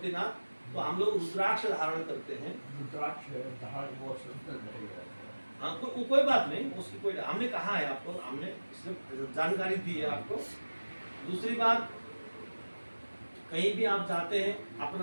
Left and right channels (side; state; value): both; inverted; correlation -1.00